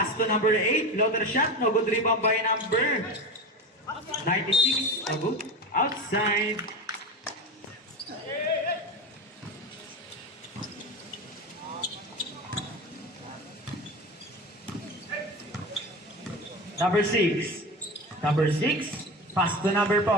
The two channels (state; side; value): normal; both; correlation 0.26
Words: to number 8. Floater shot. No good. Rebound by number 96. No good. Outside. Number 6. Number 6. Pass to number